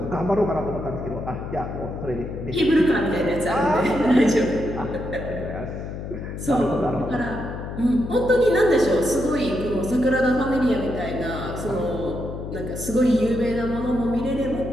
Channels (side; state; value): left; noise; hum, 8 dB below the sound